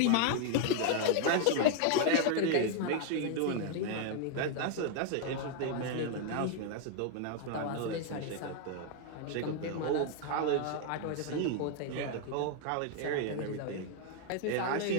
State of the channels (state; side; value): different; both; correlation 0.00